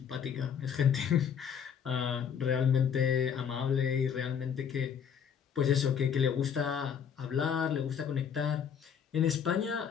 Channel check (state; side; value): quieter; right; 7.7 dB